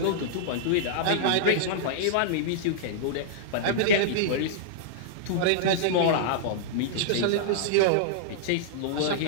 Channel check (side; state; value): both; different; correlation -0.02